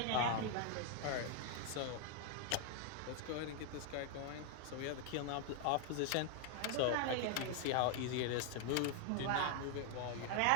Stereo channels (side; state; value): both; different; correlation 0.00